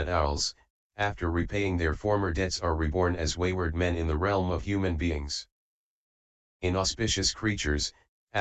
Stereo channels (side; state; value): both; identical; correlation 1.00